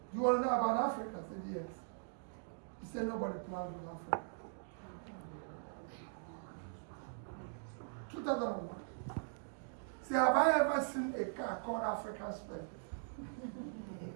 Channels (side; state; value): left; silent; digital silence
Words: you want to know about Africa? I said, yes. He said, nobody plans with Africa. 2001. Say, have I ever seen a car called African Spec?